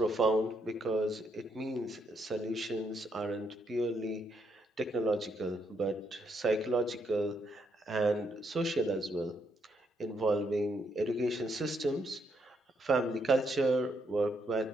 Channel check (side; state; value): both; normal; correlation 0.75